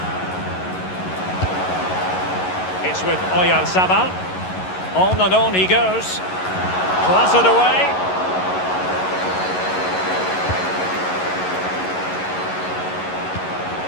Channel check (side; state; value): right; late; 11 ms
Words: It's with Oyarzabal. On and on he goes. Clattered away.